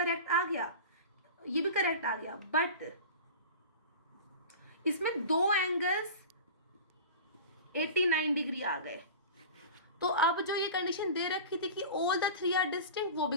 आ गया, ये भी करेक्ट आ गया, बट इसमें दो एंगल्स 89 डिग्री आ गए। तो अब जो ये कंडीशन दे रखी थी कि all the three are distinct, वो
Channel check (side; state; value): both; inverted; correlation -0.34